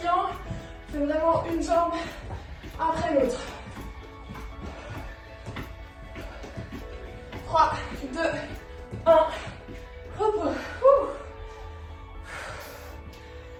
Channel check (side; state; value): both; identical; correlation 1.00